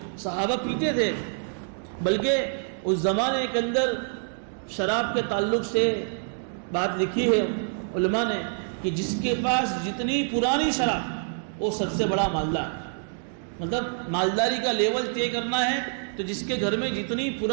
صحابہ پیتے تھے، بلکہ اس زمانے کے اندر شراب کے تعلق سے بات لکھی ہے علماء نے کہ جس کے پاس جتنی پرانی شراب وہ سب سے بڑا مالدار. مطلب مالداری کا لیول طے کرنا ہے تو جس کے گھر میں جتنی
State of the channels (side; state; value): left; silent; digital silence